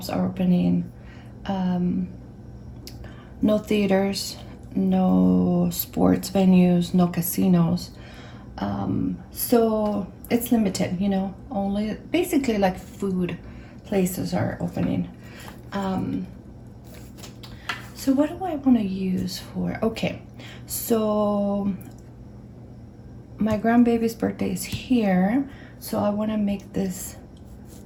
are opening, no theaters, no sports venues, no casinos. So it's limited, you know, only basically like food places are opening. So what do I want to use for? Okay, so my grandbaby's birthday is here, so I want to make this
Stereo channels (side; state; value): both; identical; correlation 1.00